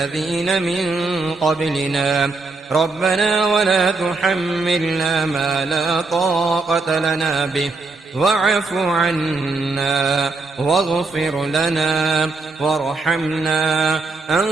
من قبلنا ربنا ولا تحملنا ما لا طاقة لنا به واعف عنا واغفر لنا وارحمنا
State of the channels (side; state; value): left; quieter; 3.7 dB